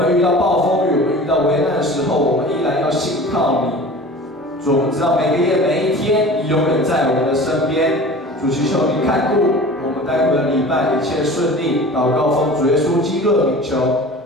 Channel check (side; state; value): both; normal; correlation 0.40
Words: 遇到暴风雨，我们遇到危难的时候，我们依然要信靠你。主，我们知道每个夜每一天，你永远在我们的身边。主，祈求你看顾我们待会的礼拜一切顺利。祷告奉主耶稣基督的名求，